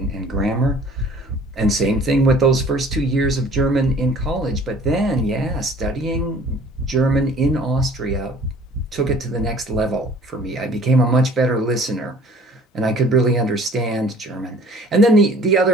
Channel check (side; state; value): both; normal; correlation 0.51